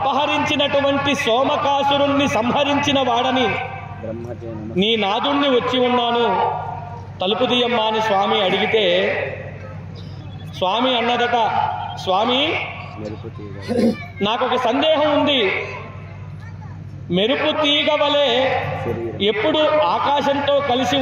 సోమకాసురుణ్ణి సంహరించిన వాడని, నీ నాదుణ్ణి వచ్చి ఉన్నాను, తలుపు తీయమ్మా అని స్వామి అడిగితే స్వామి అన్నదట, స్వామి నాకొక సందేహం ఉంది, మెరుపు తీగ వలె ఎప్పుడు ఆకాశంతో కలిసి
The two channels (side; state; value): both; identical; correlation 1.00